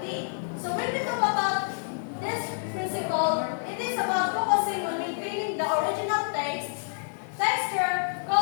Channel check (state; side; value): silent; right; digital silence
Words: So, when we talk about this principle, it is about focusing on maintaining the original taste, texture,